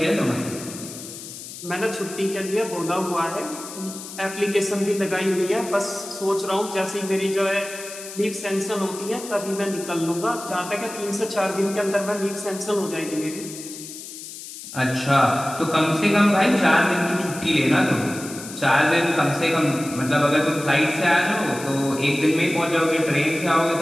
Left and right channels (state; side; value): noise; left; hiss, 12 dB below the sound